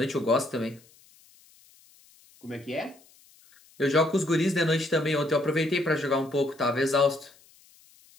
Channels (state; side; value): noise; left; hiss, 28 dB below the sound